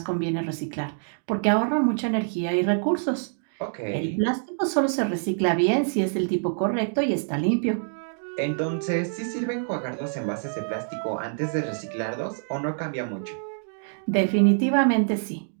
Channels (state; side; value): silent; left; digital silence